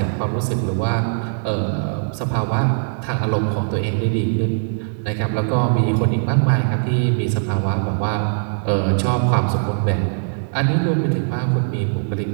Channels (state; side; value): silent; left; digital silence